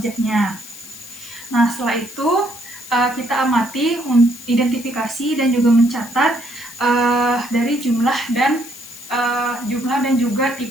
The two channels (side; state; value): left; noise; hiss, 16 dB below the sound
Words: Nah, setelah itu kita amati, identifikasi dan juga mencatat dari jumlah dan juga